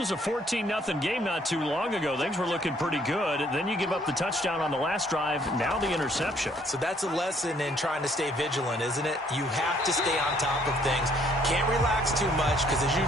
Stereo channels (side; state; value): both; normal; correlation 0.64